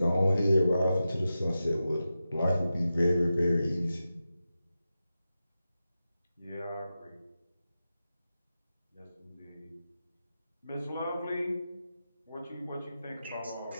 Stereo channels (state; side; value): inverted; both; correlation -0.92